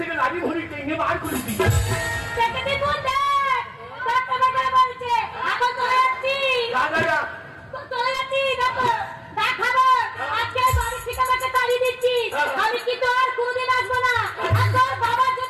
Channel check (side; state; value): both; identical; correlation 1.00